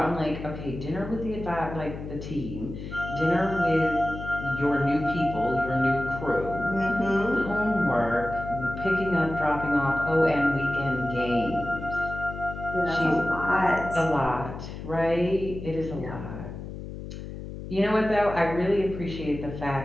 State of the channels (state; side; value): noise; left; hum, 10 dB below the sound